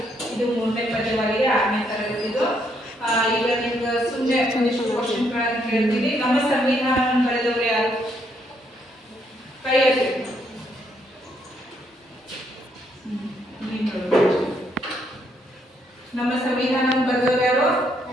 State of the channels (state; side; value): normal; both; correlation 0.73